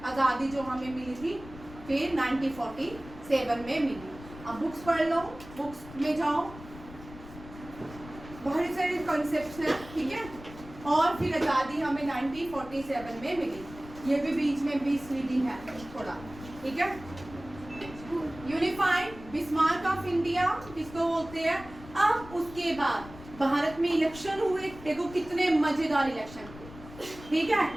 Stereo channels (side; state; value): left; noise; rumble, 16 dB below the sound